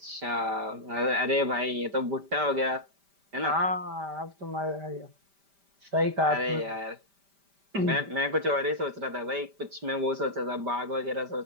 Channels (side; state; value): left; late; 5.1 ms